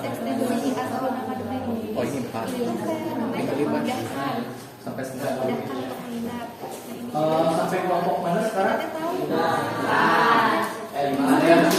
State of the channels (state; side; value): identical; both; correlation 1.00